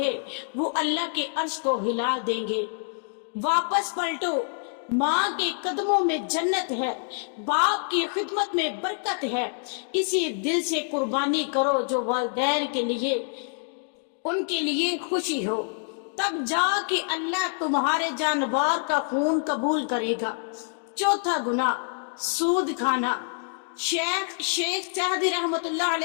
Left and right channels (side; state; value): right; silent; digital silence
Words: وہ اللہ کے عرش کو ہلا دیں گے۔ واپس پلٹو، ماں کے قدموں میں جنت ہے، باپ کی خدمت میں برکت ہے، اسی دل سے قربانی کرو جو والدین کے لیے ان کے لیے خوشی ہو، تب جا کے اللہ تمہارے جانور کا خون قبول کرے گا۔ چوتھا گناہ، سود کھانا۔ شیخ سعدی رحمت اللہ